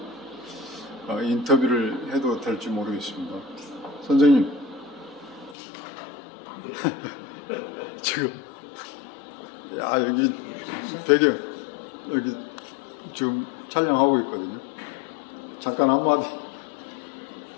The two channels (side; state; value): right; drops out; at 5.6 s